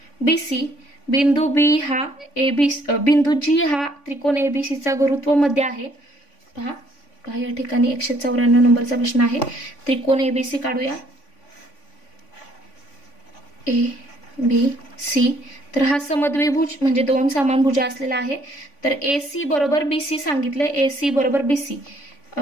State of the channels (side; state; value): right; late; 3.5 ms